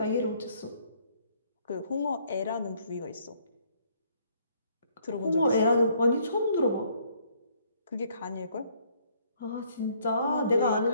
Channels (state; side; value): inverted; both; correlation -0.65